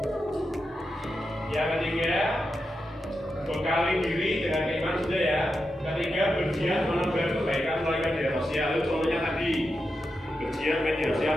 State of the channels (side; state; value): both; normal; correlation 0.88